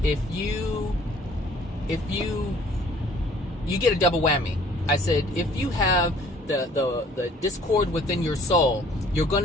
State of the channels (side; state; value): both; normal; correlation 0.56